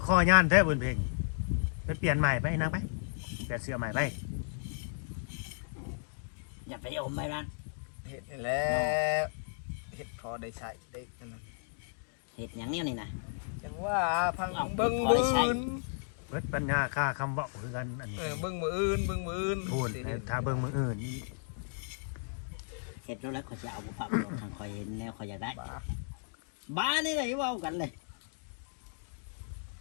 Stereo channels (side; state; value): right; silent; digital silence